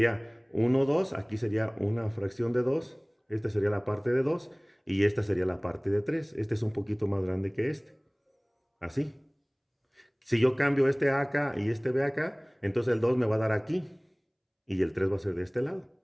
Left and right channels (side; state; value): both; identical; correlation 1.00